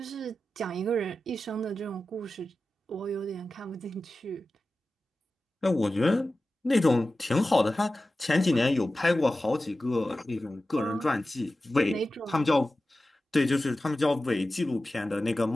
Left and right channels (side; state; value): both; normal; correlation 0.94